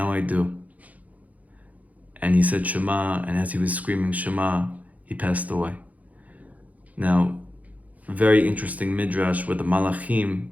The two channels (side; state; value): left; late; 0.074 ms